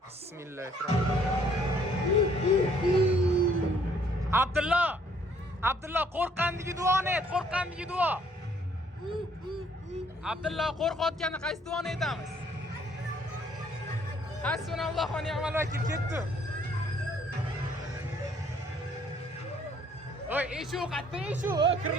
Bismillahirrohmanirrohim. Abdulloh qo'rqqandagi duoni ayt, qo'rqqandagi duo. Abdulloh qo'rqayotganda qaysi duoni aytamiz? Hasbunallohu va ni'mal vakil, ketdi. Oy, eshu, qatta eshu,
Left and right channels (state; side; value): normal; both; correlation 0.63